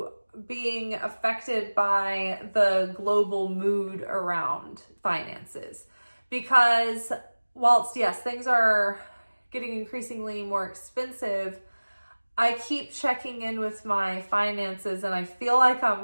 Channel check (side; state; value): both; inverted; correlation -1.00